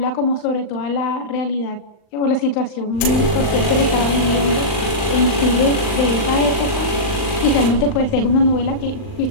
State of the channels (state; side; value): late; right; 39 ms